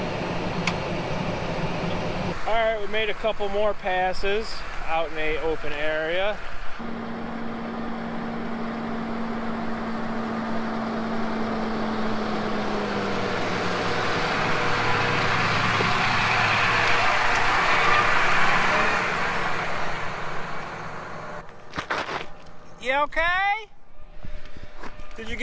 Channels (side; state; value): both; identical; correlation 1.00